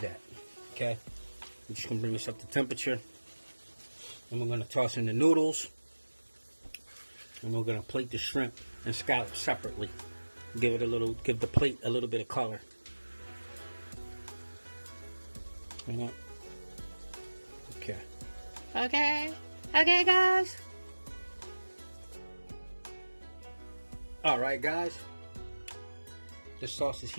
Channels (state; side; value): inverted; both; correlation -1.00